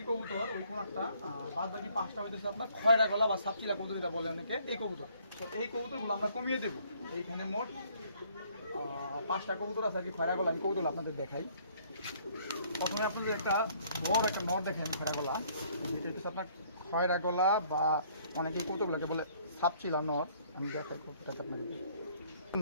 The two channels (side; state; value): both; inverted; correlation -0.61